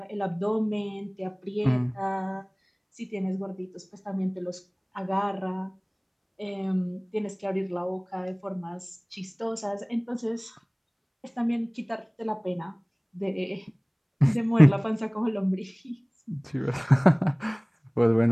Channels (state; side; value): identical; both; correlation 1.00